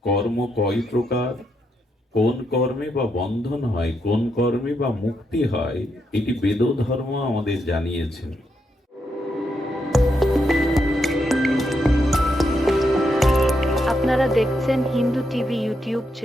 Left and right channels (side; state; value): both; normal; correlation 0.81